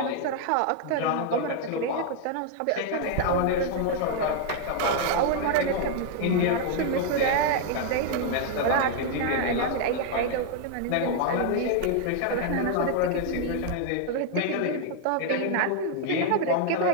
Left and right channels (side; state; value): both; different; correlation 0.00